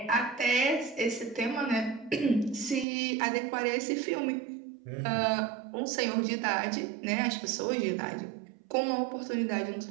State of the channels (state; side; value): drops out; left; at 2.9 s